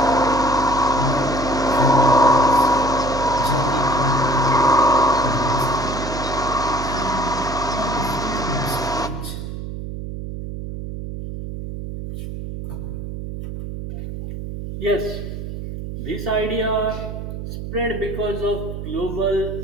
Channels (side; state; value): right; noise; hum, 8 dB below the sound